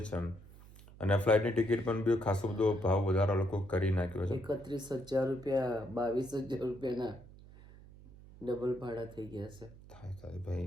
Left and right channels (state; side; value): noise; right; hum, 20 dB below the sound